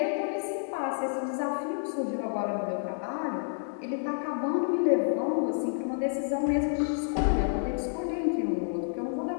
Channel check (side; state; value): right; silent; digital silence